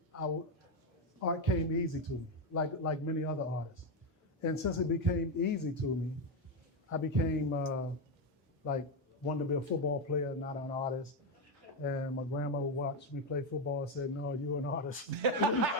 art came easy to me, like many other artists. And since it became easy to me, I became wanted to be a football player, not an artist. And my grandmother watched me play football and said, "No, you're an artist."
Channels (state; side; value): normal; both; correlation 0.08